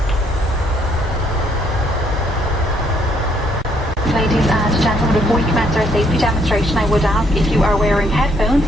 Ladies and gentlemen, before we commence our safety demonstration, I would ask if you are wearing headphones,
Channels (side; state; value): both; normal; correlation 0.69